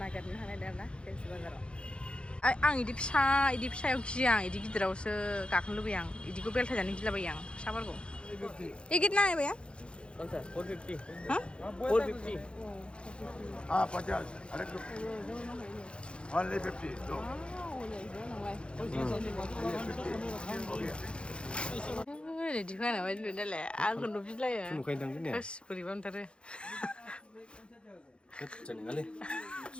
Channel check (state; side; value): late; right; 0.057 ms